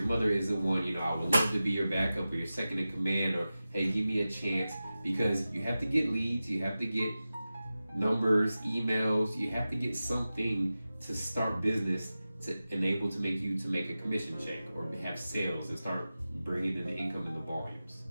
mother isn't one, you know, I would love to be your backup or your second in command, or, hey, give me a chance, because you have to get leads, you have to get numbers, emails, you have to get something to start business to enable to make you to make a commission check or have sales and start bringing in the income and the volumes.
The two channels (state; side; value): inverted; both; correlation -0.94